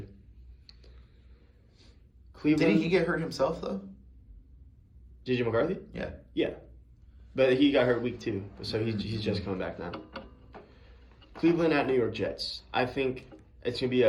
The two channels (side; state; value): both; identical; correlation 1.00